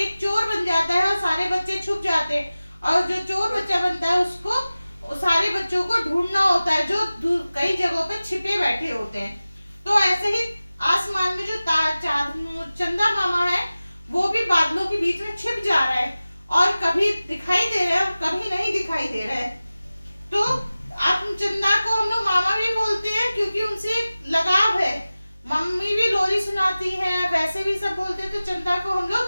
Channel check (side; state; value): both; inverted; correlation -0.97